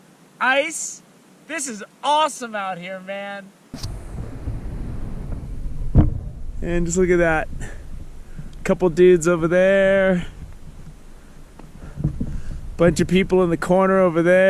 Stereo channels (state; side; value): identical; both; correlation 1.00